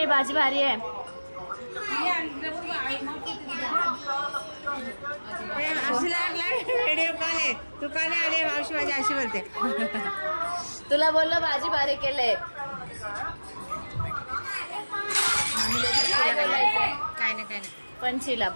भाजी भारी आहे। व्हिडिओ कॉल आहे, तू का नाही आले? मावशी माझी अशी बोलते। तुला बोललो भाजी भारी केले। काय नाही पंचीला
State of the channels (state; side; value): inverted; both; correlation -1.00